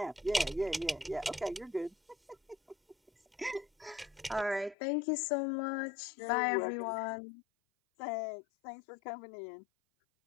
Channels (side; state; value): right; drops out; at 4.8 s